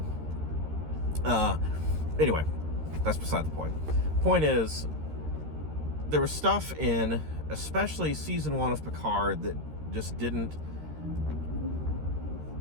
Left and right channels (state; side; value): late; left; 13 ms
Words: Anyway, that's beside the point. Point is, there was stuff in, especially Season 1 of Picard, that just didn't